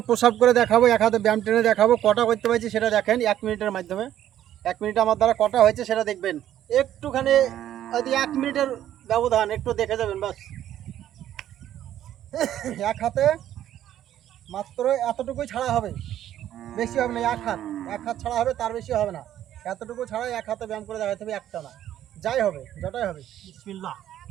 প্রসাব করে দেখাবো, এক হাতে ব্যায়াম টেনে দেখাবো। কটা করতে পারছি সেটা দেখেন 1 মিনিটের মাধ্যমে। 1 মিনিট আমার দ্বারা কটা হয়েছে সেটা দেখবেন। একটুখানি যদি 1 মিনিটের ব্যবধান একটু দেখে যাবেন বাস। এক হাতে মাত্র এতটুকুই ছাড়া হবে, বেশি হবে না। এক হাত ছাড়া হবে, তার বেশি হবে না। এতটুকু ছাড়াই এক হাতে ব্যায়াম করে দেখাতে হবে, একটা না, যাই হবে যটাই হবে। বিসমিল্লাহ।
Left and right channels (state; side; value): quieter; left; 11.7 dB